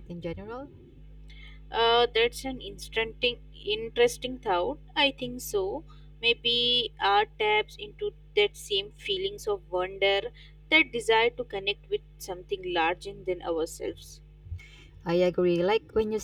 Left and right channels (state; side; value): identical; both; correlation 1.00